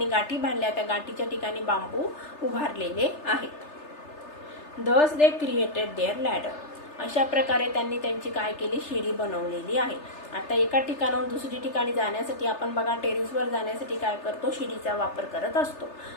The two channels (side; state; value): right; late; 3.3 ms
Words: गाठी बांधल्या त्या गाठीच्या ठिकाणी बांबू उभारलेले आहेत. Thus they created their ladder. अशा प्रकारे त्यांनी त्यांची काय केली, शिडी बनवलेली आहे. आता एका ठिकाणाहून दुसरी ठिकाणी जाण्यासाठी आपण बघा टेरेसवर जाण्यासाठी काय करतो, शिडीचा वापर करत असतो.